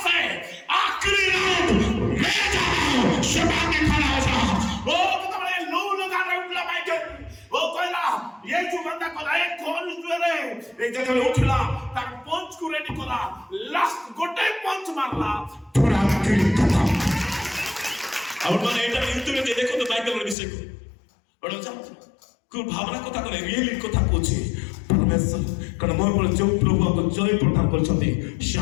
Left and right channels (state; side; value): drops out; right; at 20.4 s